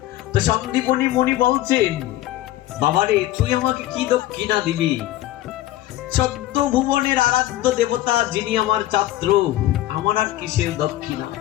তো সন্দীপনী মুনি বলছেন, বাবারে তুই আমাকে কি দক্ষিণা দিবি? 14 ভুবনের আরাধ্য দেবতা যিনি আমার ছাত্র, আমার আর কিসের দক্ষিণা?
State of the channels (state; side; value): quieter; right; 15.0 dB